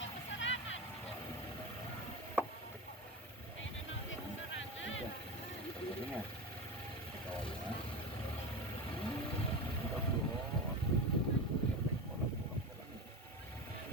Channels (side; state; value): both; normal; correlation 0.23